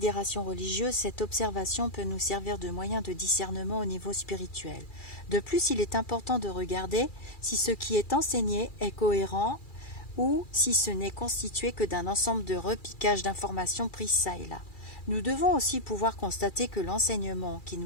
religieuse, cette observation peut nous servir de moyen de discernement au niveau spirituel. De plus, il est important de regarder si ce qui est enseigné est cohérent ou si ce n'est constitué que d'un ensemble de repiquages d'informations prises çà et là. Nous devons aussi pouvoir constater que l'enseignement qui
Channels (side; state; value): right; late; 2.4 ms